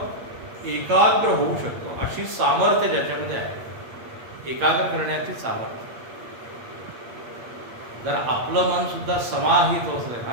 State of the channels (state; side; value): late; left; 8.6 ms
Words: एकाग्र होऊ शकतो अशी सामर्थ्य ज्याच्यामध्ये आहे. एकाग्र करण्याची सामर्थ्य. जर आपलं मन सुद्धा समाहित होत असेल, हा